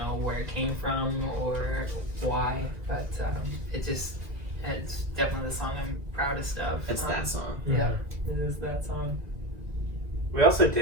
where it came from or why, but it's definitely the song I'm proudest of. It's that song. Yeah, it is that song. We also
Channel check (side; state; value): left; late; 1.7 ms